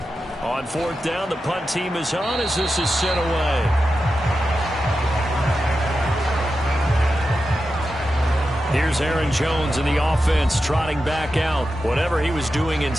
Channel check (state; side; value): normal; both; correlation 0.90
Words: On 4th down, the punt team is on as this is sent away. Here's Aaron Jones in the offense trotting back out. Whatever he was doing in